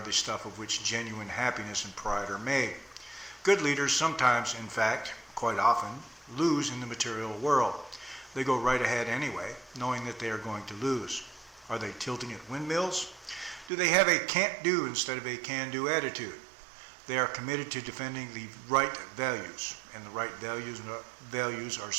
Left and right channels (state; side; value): drops out; left; at 13.7 s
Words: the stuff of which genuine happiness and pride are made. Good leaders sometimes, in fact, quite often, lose in the material world. They go right ahead anyway, knowing that they are going to lose. Are they tilting at windmills? Do they have a can't-do instead of a can-do attitude? They are committed to defending the right values, and the right values are